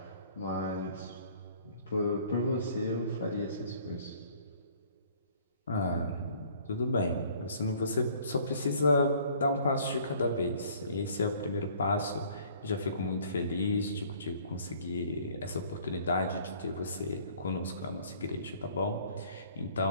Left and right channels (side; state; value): both; inverted; correlation -0.55